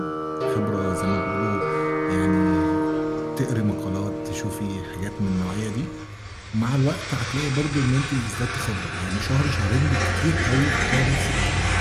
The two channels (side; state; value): both; identical; correlation 1.00